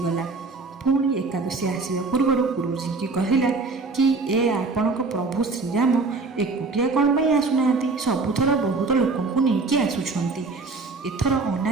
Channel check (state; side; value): quieter; left; 3.9 dB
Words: पुणी एकादशी आसवा पूर्व गुरुजी की कहला कि ए आपण प्रभु श्रीराम एकुटिया कौन पाई आसुना, सबुथर बहुत लोक नहीं आसुंट। ଏଥର